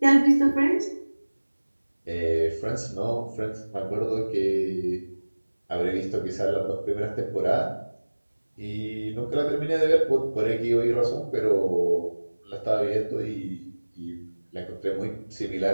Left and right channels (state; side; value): inverted; both; correlation -1.00